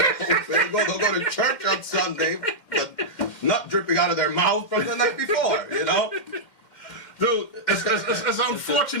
They'll go to church on Sunday, but nut dripping out of their mouth from the night before, you know? Dude, it's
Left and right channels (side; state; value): right; late; 2.1 ms